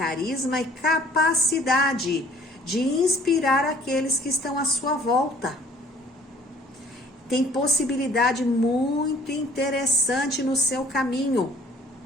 e capacidade de inspirar aqueles que estão à sua volta. Tem possibilidade muito interessante no seu caminho.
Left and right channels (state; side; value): normal; both; correlation 0.55